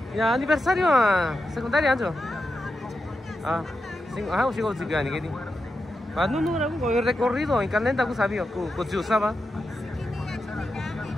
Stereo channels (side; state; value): both; normal; correlation 0.88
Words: Ya aniversario secundaria anjo. Ah, sigo ni que ni. Ah, no, el recorrido en Calenta que sabía, que usaba.